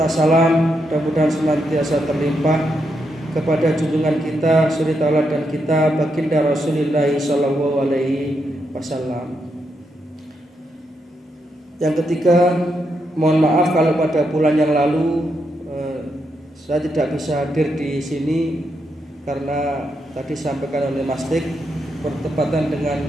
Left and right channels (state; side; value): normal; both; correlation 0.82